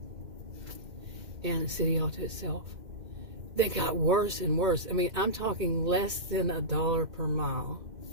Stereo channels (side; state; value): left; late; 2.1 ms